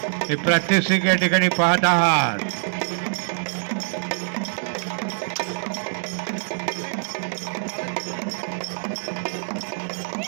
हे प्रात्यक्षिक या ठिकाणी पाहत आहात।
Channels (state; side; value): silent; left; digital silence